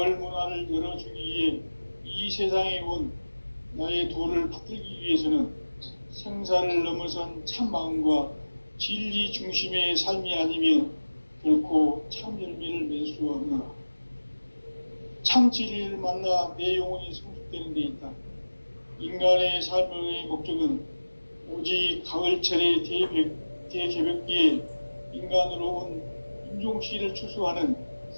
문화를 열어주기 위해 이 세상에 온 나의 도를 받들기 위해서는 생사를 넘어선 참 마음과 진리 중심의 삶이 아니면 결코 참 열매를 맺을 수 없노라. 참 진리를 만나 내 영혼이 성숙되는 데 있다. 인간의 삶의 목적은 오직 가을철의 대개벽기에 인간으로 온 인종씨를 추수하는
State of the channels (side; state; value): both; inverted; correlation -1.00